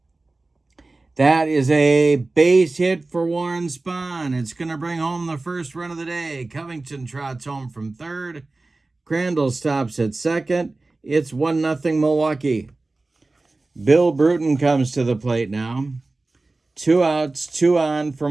That is a base hit for Warren Spahn. It's going to bring home the first run of the day. Covington trots home from third. Crandall stops at second. It's 1-0 Milwaukee. Bill Bruton comes to the plate now. 2 outs, 2 on for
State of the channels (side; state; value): left; quieter; 3.2 dB